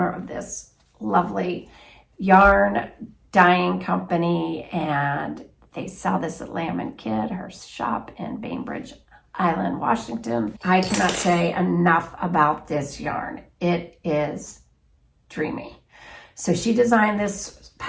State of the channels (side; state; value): both; identical; correlation 1.00